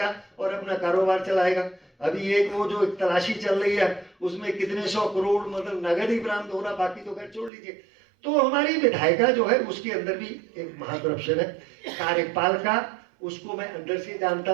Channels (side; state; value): left; drops out; at 7.5 s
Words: और अपना कारोबार चलाएगा। अभी एक वो जो तलाशी चल रही है, उसमें कितने 100 करोड़ मतलब नगद ही बरामद हो रहा, बाकी तो खैर छोड़ लीजिए। तो हमारी विधायिका जो है, उसके अंदर भी एक महाकरप्शन है। कार्यपालिका, उसको मैं अंदर से जानता